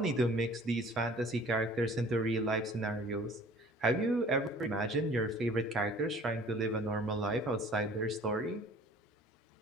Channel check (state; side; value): normal; both; correlation 0.50